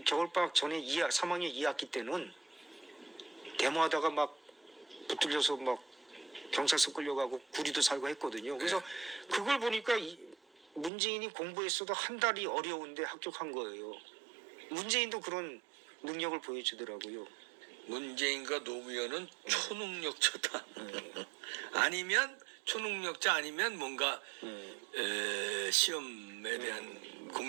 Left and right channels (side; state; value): left; drops out; at 10.9 s